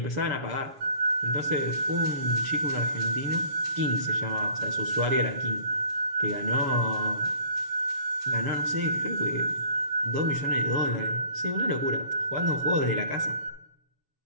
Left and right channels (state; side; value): late; left; 7.1 ms